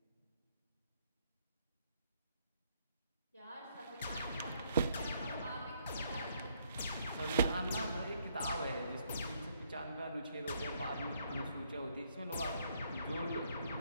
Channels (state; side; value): inverted; both; correlation -0.71